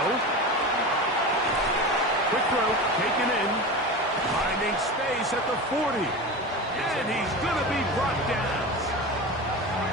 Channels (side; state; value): both; normal; correlation 0.27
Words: Quick throw, taken in. Finding space at the 40. And he's going to be brought down.